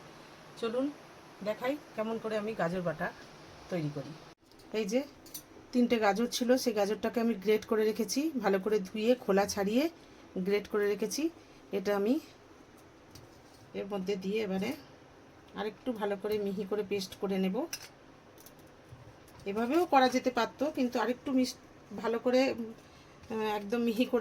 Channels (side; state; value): both; identical; correlation 1.00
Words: চলুন দেখাই কেমন করে আমি গাজর বাটা তৈরি করি। এই যে 3টে গাজর ছিল, সেই গাজরটাকে আমি গ্রেট করে রেখেছি, ভালো করে ধুয়ে খোলা ছাড়িয়ে গ্রেট করে রেখেছি। এটা আমি এর মধ্যে দিয়ে এবারে আরেকটু ভালো করে মিহি করে পেস্ট করে নেব। এভাবেও করা যেতে পারতো, কিন্তু আরেকটু ভালো করে একদম মিহি